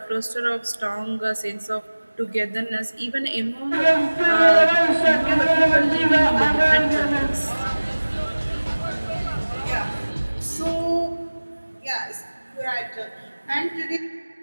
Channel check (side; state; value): both; inverted; correlation -1.00